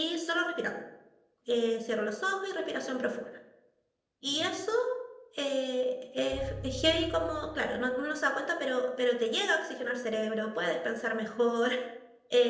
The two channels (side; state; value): both; identical; correlation 1.00